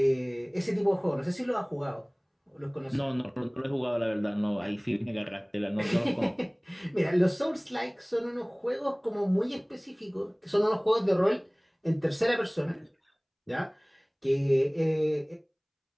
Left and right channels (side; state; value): both; identical; correlation 1.00